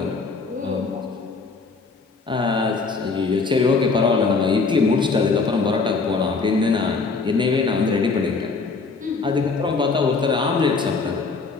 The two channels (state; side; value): quieter; right; 4.4 dB